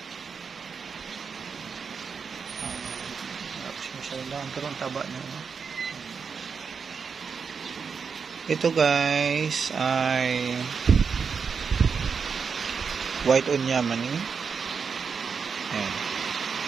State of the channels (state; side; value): quieter; left; 5.8 dB